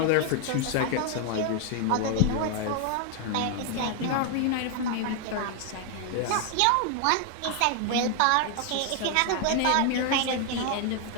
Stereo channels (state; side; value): different; both; correlation 0.00